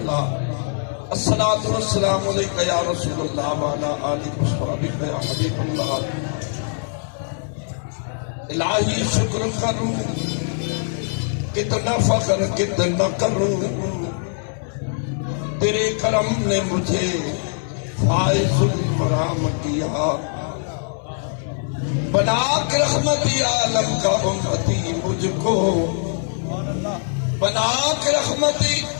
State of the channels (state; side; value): silent; right; 64 dB below the other